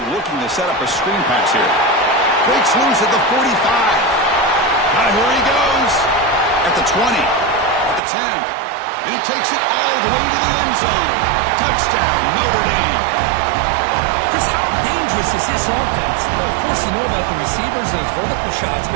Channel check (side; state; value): left; drops out; at 8.0 s